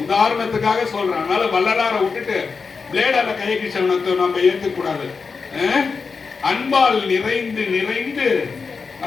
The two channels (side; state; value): right; quieter; 5.0 dB